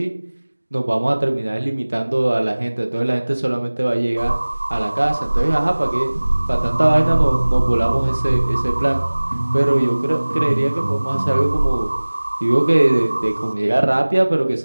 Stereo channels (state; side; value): inverted; both; correlation -1.00